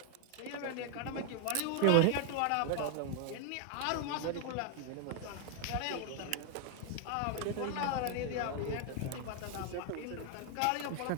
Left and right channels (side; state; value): both; different; correlation 0.00